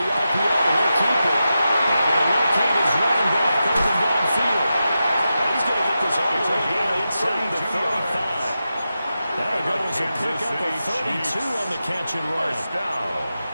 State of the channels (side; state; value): both; inverted; correlation -0.90